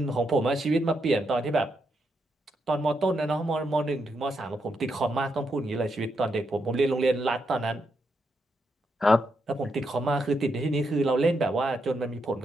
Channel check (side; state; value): both; normal; correlation 0.81